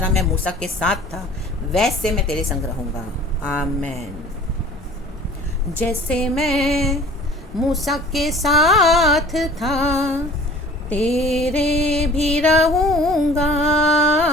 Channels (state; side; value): normal; both; correlation 0.47